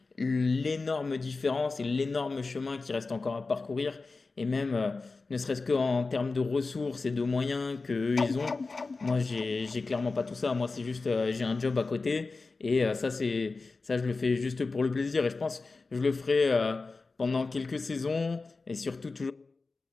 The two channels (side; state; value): right; quieter; 3.9 dB